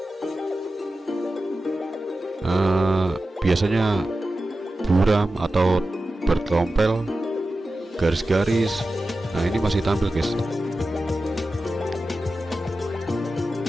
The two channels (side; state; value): both; normal; correlation 0.93